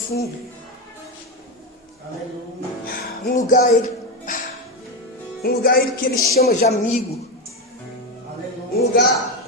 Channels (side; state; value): both; normal; correlation 0.13